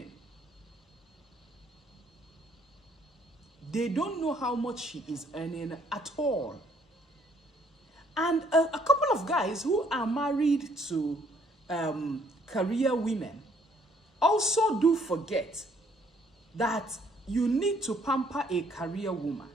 They don't know how much she is earning at all. And a couple of guys who are married to career women also do forget that you need to pamper a career woman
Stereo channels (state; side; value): normal; both; correlation 0.65